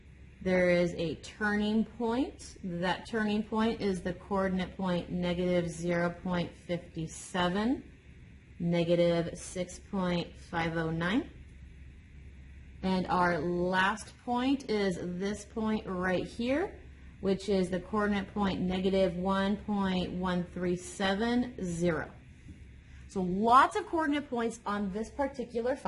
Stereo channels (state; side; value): identical; both; correlation 1.00